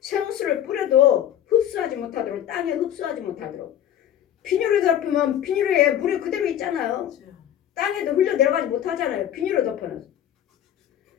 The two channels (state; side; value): quieter; right; 10.6 dB